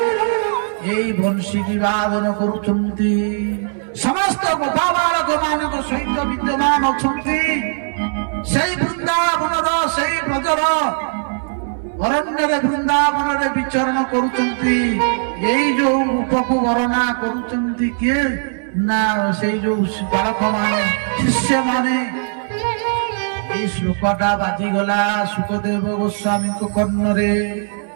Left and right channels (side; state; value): left; silent; digital silence